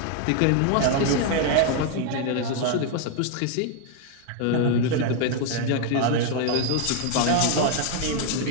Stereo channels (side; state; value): both; different; correlation 0.00